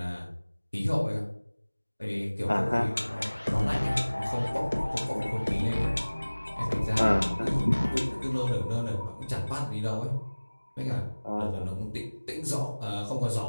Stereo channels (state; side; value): inverted; both; correlation -1.00